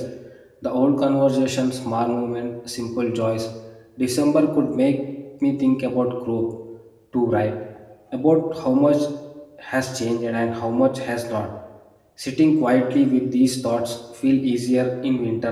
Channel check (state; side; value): identical; both; correlation 1.00